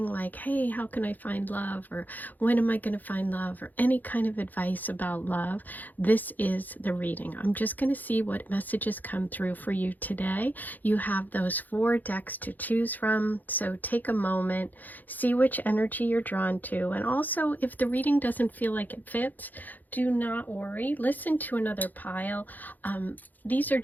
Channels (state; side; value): late; right; 0.084 ms